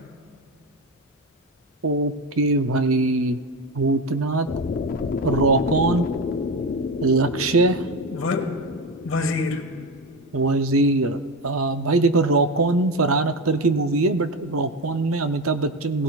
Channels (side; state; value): both; normal; correlation 0.19